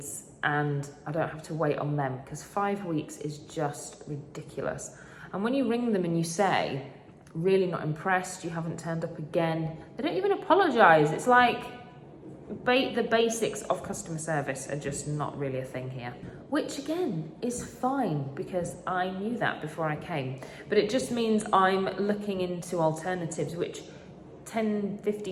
and I don't have to wait on them, because 5 weeks is just ridiculous. And when you ring them and you say, really not impressed, you haven't turned up again, they don't even apologise. It's like, the basics of customer service are just not really a thing here, which again is fine, because I knew that before I came. But it just means I'm looking into alternatives, which 10,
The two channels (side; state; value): both; identical; correlation 1.00